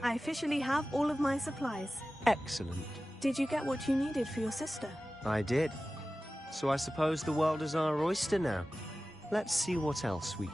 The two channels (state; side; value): normal; both; correlation 0.96